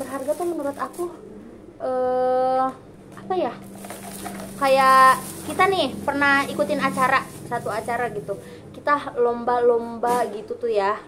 tuh menurut aku apa ya, kayak kita nih pernah ikutin satu acara gitu, kita lomba-lomba gitu tuh ya,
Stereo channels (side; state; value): both; identical; correlation 1.00